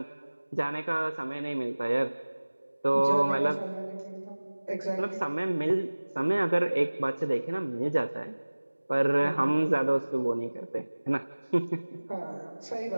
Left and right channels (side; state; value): both; inverted; correlation -1.00